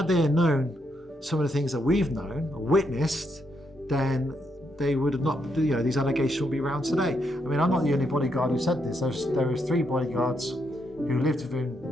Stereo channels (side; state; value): both; normal; correlation 0.78